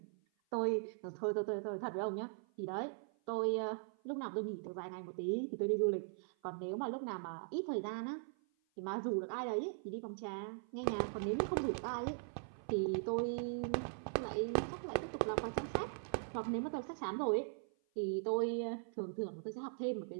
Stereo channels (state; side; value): silent; left; 51 dB below the other